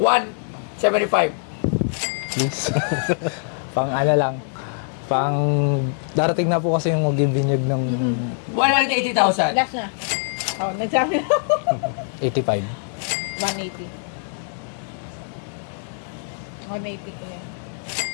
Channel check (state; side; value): silent; right; 63 dB below the other